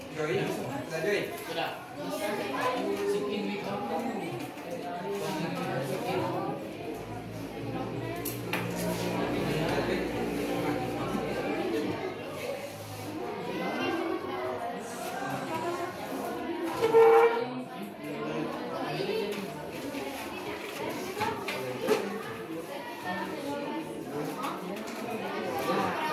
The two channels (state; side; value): identical; both; correlation 1.00